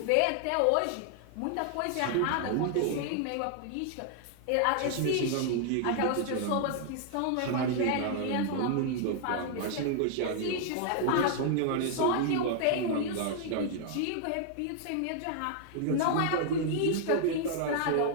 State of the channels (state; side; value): different; both; correlation 0.00